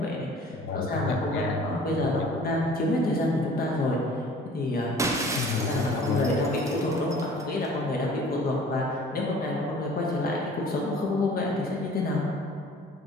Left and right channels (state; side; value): normal; both; correlation 0.49